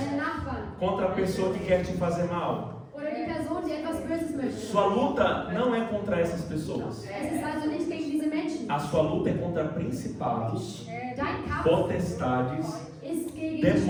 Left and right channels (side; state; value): both; identical; correlation 1.00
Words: Nachbarn contra a pessoa que quer te fazer mal. oder die Person, die etwas Böses möchte. Sua luta não é contra essas pessoas. Es ist also nicht gegen diese Menschen. A sua luta é contra principados, Dein Kampf potestades, ist gegen